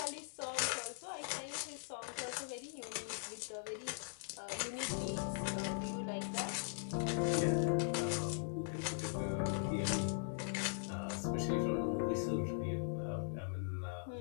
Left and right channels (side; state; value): right; silent; digital silence